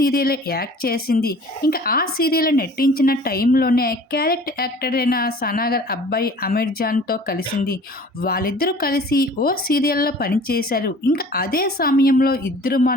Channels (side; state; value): both; normal; correlation 0.47